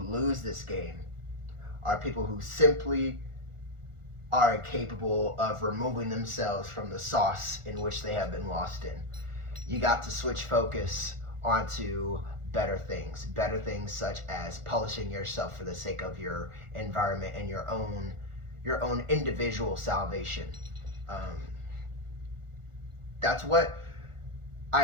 this game are people who simply are incapable of removing themselves from the sauce in which they have been lost in. You got to switch focus onto better things such as polishing yourself for the sake of your environment and your own individual salvation. That's what I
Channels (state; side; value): late; left; 1.4 ms